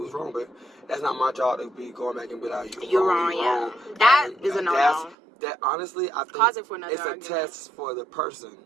was wrong, but that's not my job to be going back and be like, you're wrong. Yeah. That is a no-no. That honestly, I think it's a test for the person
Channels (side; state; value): left; drops out; at 5.2 s